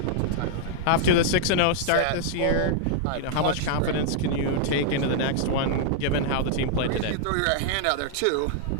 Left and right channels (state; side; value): different; both; correlation -0.01